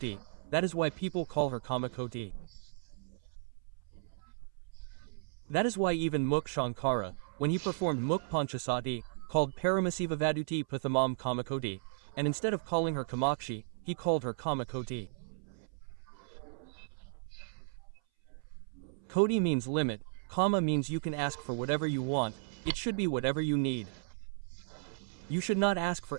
That is why people call her Kamakoti. That is why even Mukh Shankara, when he performed Mukh Panchasati, called Paramasiva Vaduti Pathamam Kamakoti, and instead of calling her Kamakshi, he called her Kamakoti. Koti means limit, Kama means you can ask for whatever you want, it should be whatever you need. You should not ask for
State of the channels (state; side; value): silent; left; 55 dB below the other